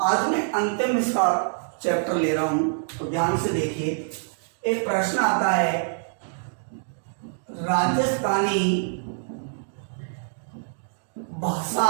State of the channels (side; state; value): left; silent; digital silence